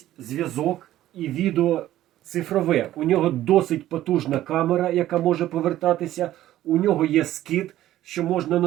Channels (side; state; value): left; quieter; 13.8 dB